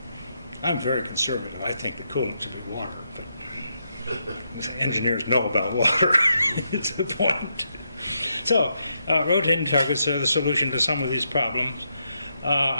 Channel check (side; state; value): both; inverted; correlation -0.81